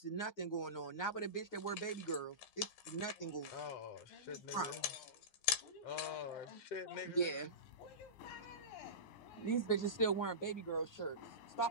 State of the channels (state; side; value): late; right; 9.6 ms